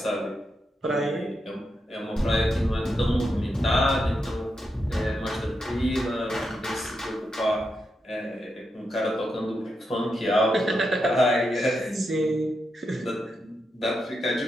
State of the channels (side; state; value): both; normal; correlation 0.85